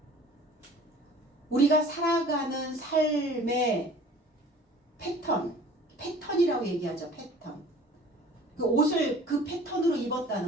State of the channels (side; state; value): both; normal; correlation 0.48